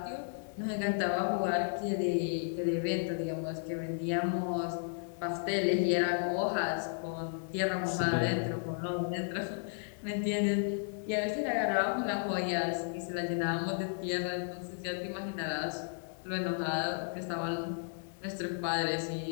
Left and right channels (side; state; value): right; silent; digital silence